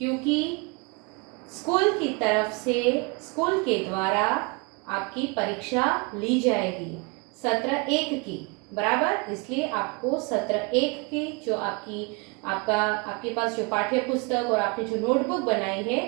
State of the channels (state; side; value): quieter; left; 29.8 dB